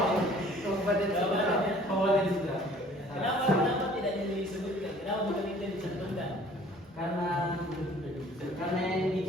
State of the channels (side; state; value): both; normal; correlation 0.53